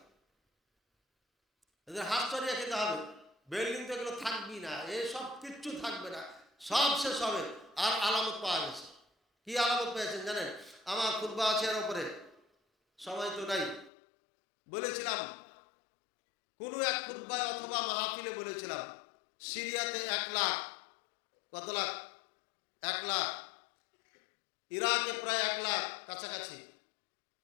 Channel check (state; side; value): drops out; right; at 13.9 s